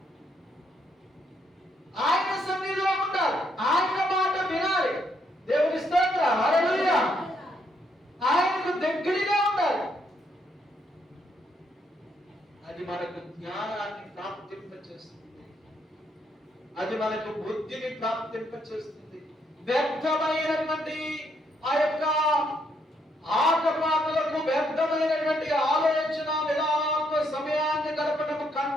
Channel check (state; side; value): normal; both; correlation 0.74